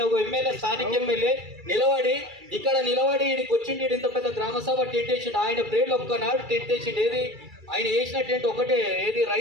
ఒక ఎమ్మెల్యే, స్థానిక ఎమ్మెల్యే ఇక్కడ నిలబడి ఈడికి వచ్చిండు. ఇంత పెద్ద గ్రామ సభ టెంట్ వేసిండు. ఆయన ప్రేర్లు ఒక్కనాడు టెంట్ వేసిండు. ఏది ఆయన వేసిన టెంట్ ఒకటే, ఏది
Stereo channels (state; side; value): late; left; 2.3 ms